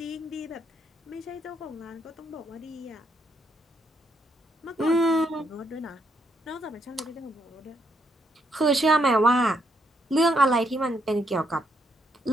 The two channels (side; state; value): both; normal; correlation 0.76